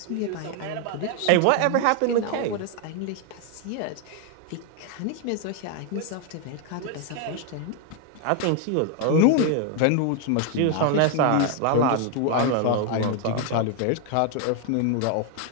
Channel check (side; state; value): both; different; correlation 0.00